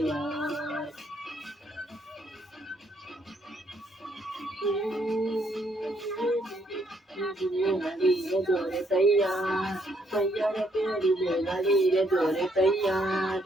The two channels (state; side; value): normal; both; correlation 0.72